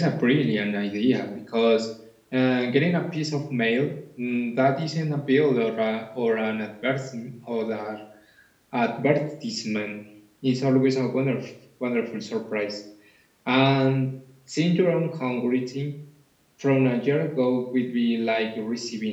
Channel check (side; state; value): both; identical; correlation 1.00